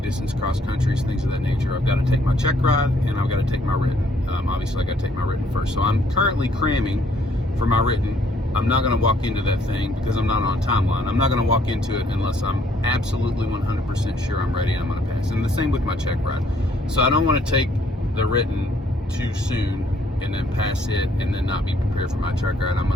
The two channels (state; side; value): normal; both; correlation 0.65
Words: distance cross countries, things of that nature. I've got to take my check ride and I've got to take my written. Obviously I got to take my written first. So I'm currently cramming for my written. I'm not going to walk into that thing because I'm not on a timeline. I'm not going to walk into it unless I'm absolutely 100% sure I'm ready and I'm going to pass. And the same with my check ride. So I don't want to take the written too soon and then pass it and then not be prepared for my check ride.